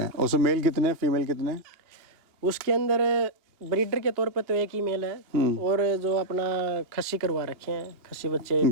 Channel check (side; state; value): left; late; 2.8 ms